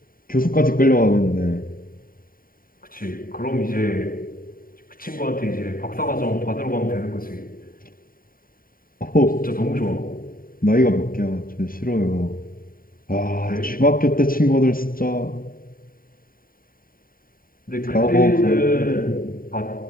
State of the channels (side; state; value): right; late; 0.41 ms